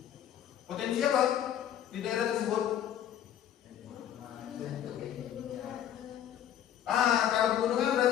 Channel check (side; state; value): right; quieter; 10.5 dB